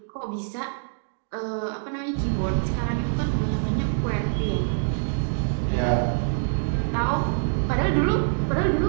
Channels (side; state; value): left; silent; digital silence